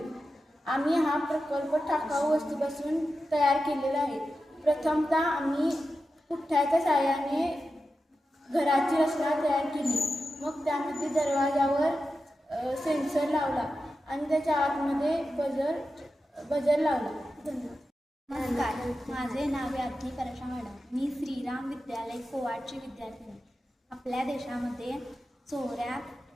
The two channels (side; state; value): both; normal; correlation 0.91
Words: आम्ही हा प्रकल्प टाकाऊ वस्तूपासून तयार केलेला आहे. प्रथमतः आम्ही पुठ्ठ्याच्या साहाय्याने घराची रचना तयार केली. मग त्यामध्ये दरवाजावर सेन्सर लावला आणि त्याच्या आतमध्ये बजर लावला. धन्यवाद. नमस्कार, माझे नाव याज्ञी परेशा मॅडम. मी श्रीराम विद्यालय कोवाडची विद्यार्थिनी. आपल्या देशामध्ये चोऱ्या